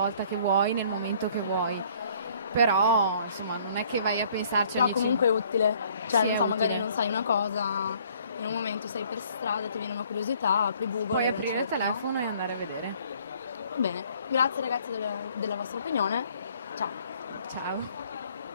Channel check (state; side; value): inverted; both; correlation -0.60